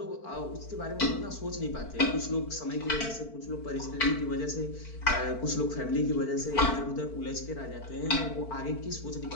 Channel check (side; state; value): right; late; 4.5 ms